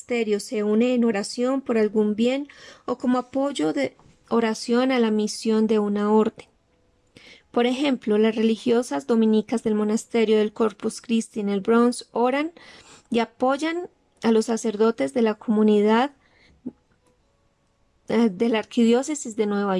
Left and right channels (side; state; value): both; identical; correlation 1.00